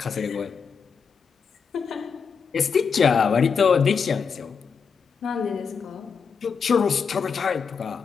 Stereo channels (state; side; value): quieter; right; 6.0 dB